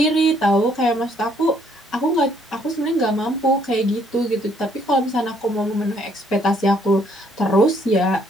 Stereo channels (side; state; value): both; normal; correlation 0.66